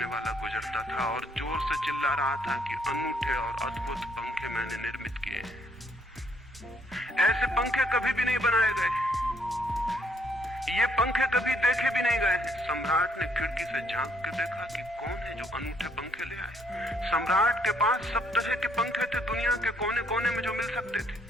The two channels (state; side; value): normal; both; correlation 0.68